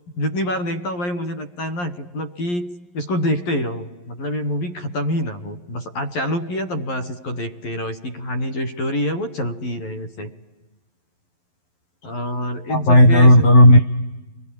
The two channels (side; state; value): right; late; 11 ms